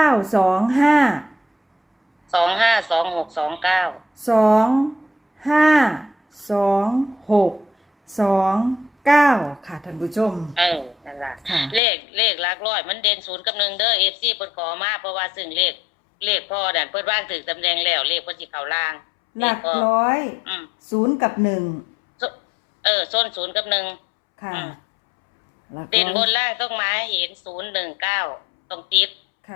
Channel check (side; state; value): right; drops out; at 11.8 s